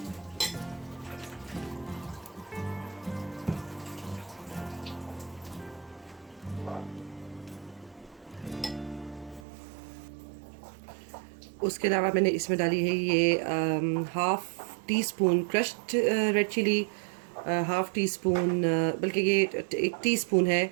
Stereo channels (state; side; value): drops out; left; at 9.5 s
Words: उसके अलावा मैंने इसमें डाली है ये 1/2 teaspoon crushed red chili, 1/2 teaspoon बल्कि ये 1 टीस्पून है